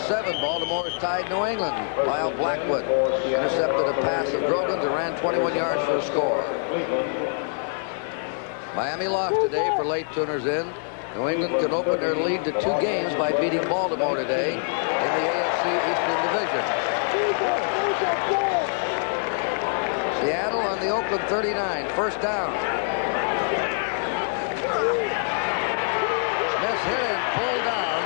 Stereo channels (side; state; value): right; silent; 57 dB below the other